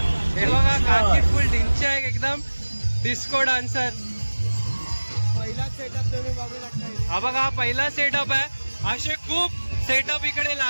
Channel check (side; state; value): both; inverted; correlation -1.00